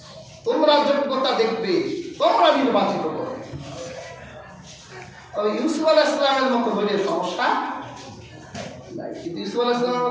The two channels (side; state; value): both; identical; correlation 1.00